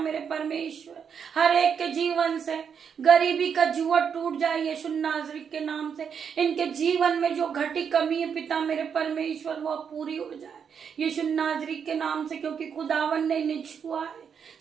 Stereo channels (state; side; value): quieter; left; 7.1 dB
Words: परमेश्वर। हर एक के जीवन से गरीबी का जुआ टूट जाए यीशु नाज़री के नाम से। इनके जीवन में जो घटी कमी है पिता मेरे परमेश्वर वो पूरी हो जाए यीशु नाज़री के नाम से, क्योंकि खुदावन ने इन्हें छुआ है।